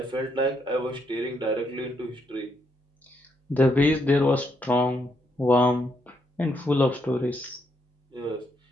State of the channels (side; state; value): both; normal; correlation 0.76